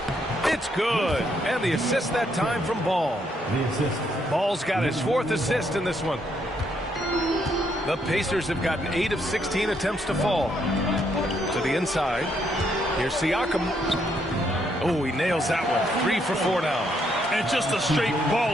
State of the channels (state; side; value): normal; both; correlation 0.74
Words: It's good. And the assist that time from Ball. Ball's got his 4th assist in this one. The Pacers have gotten 8 of 16 attempts to fall. To the inside. Here's Siakam. Oh, he nails that one. 3 for 4 now. And just a straight